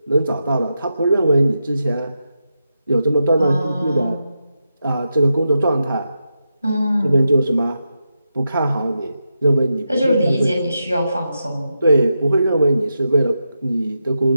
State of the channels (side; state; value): both; inverted; correlation -0.87